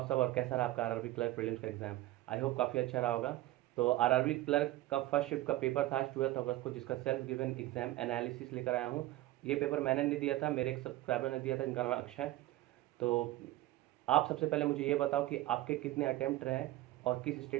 सब और कैसा रहा आपका आरआरबी क्लर्क प्रीलिम्स का एग्जाम। आई होप काफ़ी अच्छा रहा होगा। तो आरआरबी क्लर्क का फर्स्ट शिफ्ट का पेपर था आज 12 अगस्त को, जिसका सेल्फ गिवन एग्जाम एनालिसिस लेकर आया हूँ। ये पेपर मैंने नहीं दिया था, मेरे एक सब्सक्राइबर ने दिया था, इनका नाम है अक्षय। तो आप सबसे पहले मुझे ये बताओ कि आपके कितने अटेम्प्ट रहे और किस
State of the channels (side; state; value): left; quieter; 16.5 dB